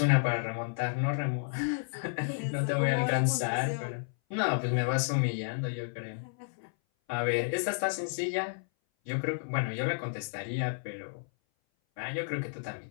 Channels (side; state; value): right; silent; 57 dB below the other